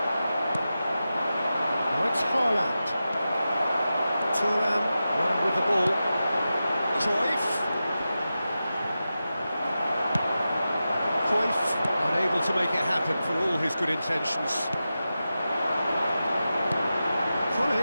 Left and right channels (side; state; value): both; inverted; correlation -0.92